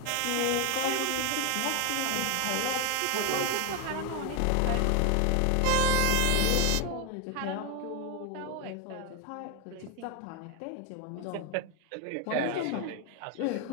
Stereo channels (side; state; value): both; different; correlation 0.00